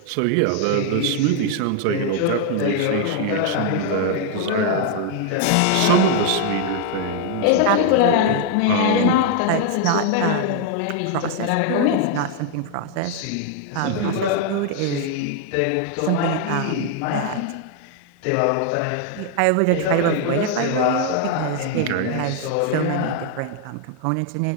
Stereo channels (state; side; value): different; both; correlation 0.00